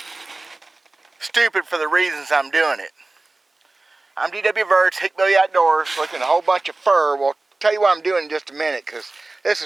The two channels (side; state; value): left; quieter; 3.2 dB